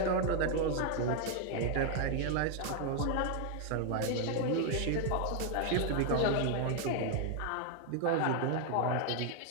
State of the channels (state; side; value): different; both; correlation 0.00